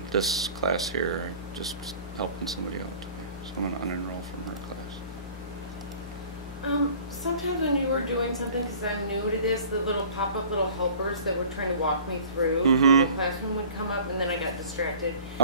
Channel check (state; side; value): inverted; both; correlation -0.46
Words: this class here, just helping somebody out today. So I'm going to unenroll from her class. Sometimes when you were doing something, because I'm new to this, the little pop-up little helpers that were trying to walk me through Google Classroom would come up, and then I got distracted.